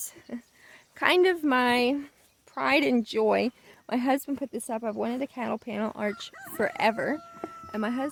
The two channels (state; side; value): identical; both; correlation 1.00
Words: kind of my pride and joy. My husband put this up. I've wanted a cattle panel arch forever, and my